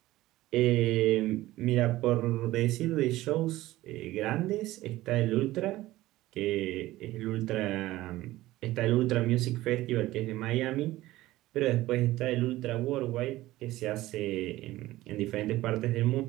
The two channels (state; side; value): quieter; left; 16.8 dB